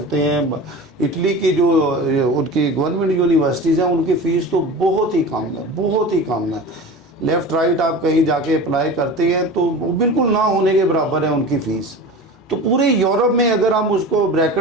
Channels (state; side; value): normal; both; correlation 0.33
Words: हैं। इटली की जो उनकी गवर्नमेंट यूनिवर्सिटीज़ हैं उनकी फ़ीस तो बहुत ही कम है, बहुत ही कम है। लेफ़्ट राइट आप कहीं जाके अप्लाई करते हैं तो वो बिल्कुल ना होने के बराबर है उनकी फ़ीस। तो पूरे यूरोप में अगर हम उसको